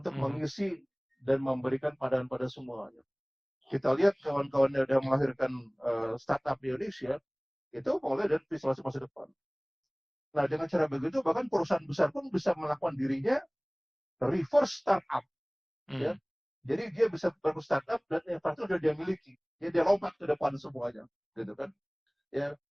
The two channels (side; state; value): both; identical; correlation 1.00